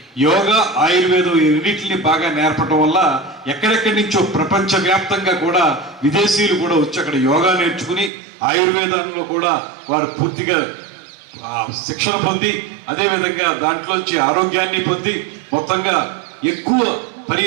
యోగా, ఆయుర్వేదం ఈ రెండింటిని బాగా నేర్పడం వల్ల ఎక్కడెక్కడి నుంచో ప్రపంచవ్యాప్తంగా కూడా విదేశీయులు కూడా వచ్చి అక్కడ యోగా నేర్చుకుని ఆయుర్వేదంలో కూడా వారు పూర్తిగా శిక్షణ పొంది, అదేవిధంగా దాంట్లోంచి ఆరోగ్యాన్ని పొంది మొత్తంగా ఎక్కువ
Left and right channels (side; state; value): left; drops out; at 8.1 s